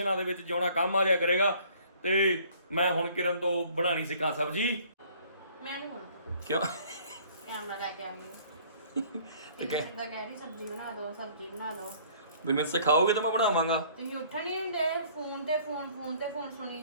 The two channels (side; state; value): both; inverted; correlation -0.56